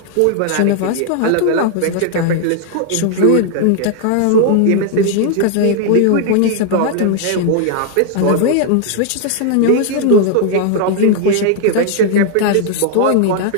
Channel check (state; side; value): different; both; correlation 0.00